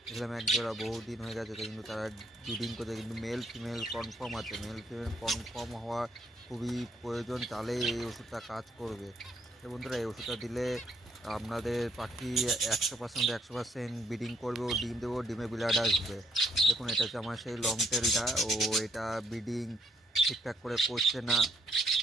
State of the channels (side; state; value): both; normal; correlation 0.71